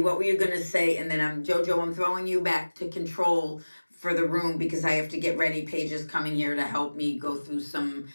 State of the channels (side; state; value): both; inverted; correlation -1.00